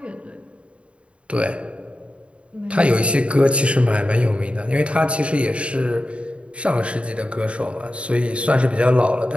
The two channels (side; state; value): left; late; 0.060 ms